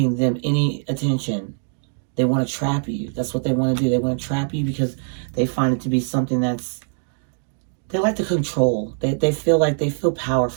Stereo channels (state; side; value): silent; left; 64 dB below the other